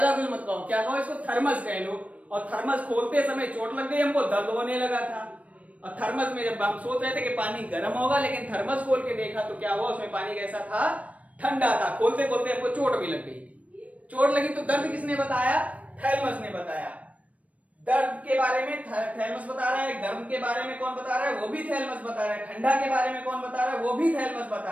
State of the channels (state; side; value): late; left; 0.067 ms